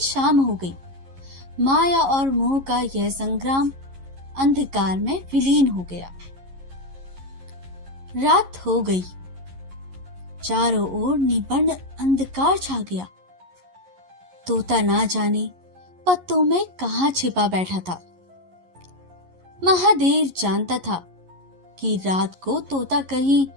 हो गई। माया और मोह का यह संग्राम अंधकार में विलीन हो गया। रात हो गई। चारों ओर निबंध अंधकार छा गया। तोता ना जाने पत्तों में कहां छिपा बैठा था। महादेव जानता था कि रात को तोता कहीं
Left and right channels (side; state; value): left; late; 11 ms